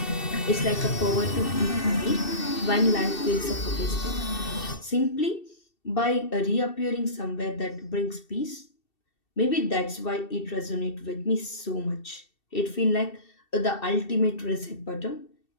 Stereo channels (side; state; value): right; late; 2.7 ms